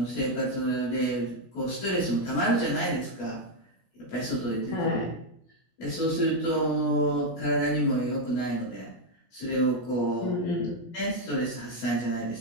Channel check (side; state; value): right; late; 17 ms